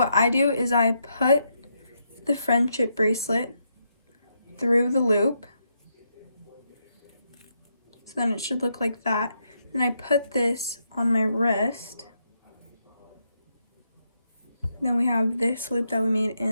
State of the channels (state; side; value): inverted; both; correlation -0.80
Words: I do is I put the friendship bracelet through the loop. So then it should look like that. Then I put this on my wrist. Then we have this loop that we made